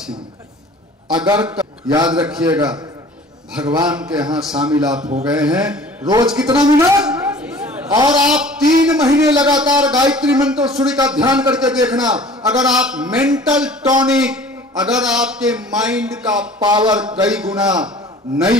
में। अगर याद रखिएगा, भगवान के यहां शामिल आप हो गए हैं, रोज कितना मिनट? और आप 3 महीने लगातार गायत्री मंत्र सूर्य का ध्यान करके देखना। अगर आप मेंटल टॉनिक, अगर आपके माइंड का पावर कई गुना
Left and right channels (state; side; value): normal; both; correlation 0.47